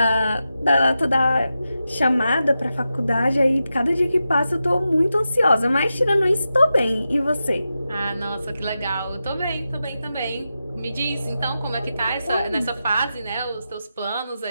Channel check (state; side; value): inverted; both; correlation -0.90